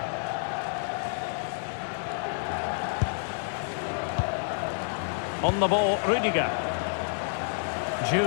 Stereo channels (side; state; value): right; silent; 59 dB below the other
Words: On the ball, Rudiger.